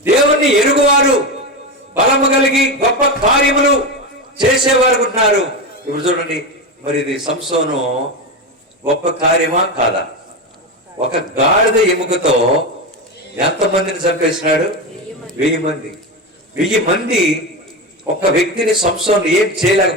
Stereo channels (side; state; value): both; normal; correlation 0.17